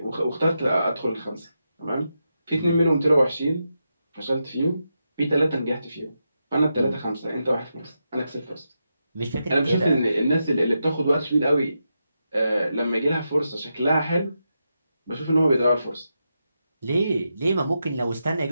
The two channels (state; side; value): inverted; both; correlation -0.86